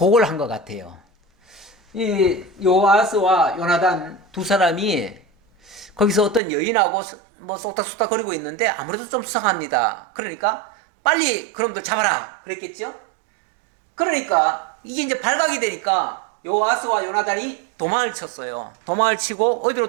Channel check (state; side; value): drops out; left; at 6.4 s